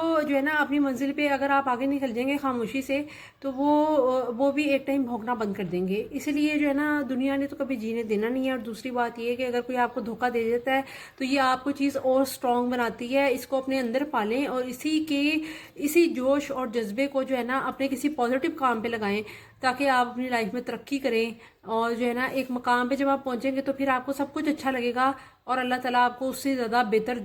جو ہے نا اپنی منزل پہ اگر آپ آگے نکل جائیں گے خاموشی سے تو وہ بھی ایک ٹائم بھونکنا بند کر دیں گے۔ اسی لیے جو ہے نا دنیا نے تو کبھی جینے دینا نہیں ہے۔ اور دوسری بات یہ ہے کہ اگر کوئی آپ کو دھوکہ دے دیتا ہے تو یہ آپ کو چیز اور سٹرونگ بناتی ہے، اس کو اپنے اندر پالیں اور اسی جوش اور جذبے کو جو ہے نا اپنے کسی پازیٹیو کام پہ لگائیں تاکہ آپ اپنی لائف میں ترقی کریں، اور جو ہے نا ایک مقام پہ جب آپ پہنچیں گے تو پھر آپ کو سب کچھ اچھا لگے گا اور اللہ تعالیٰ آپ کو اس سے زیادہ بہتر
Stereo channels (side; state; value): both; identical; correlation 1.00